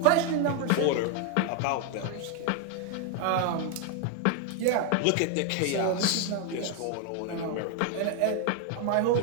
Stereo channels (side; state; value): both; different; correlation 0.01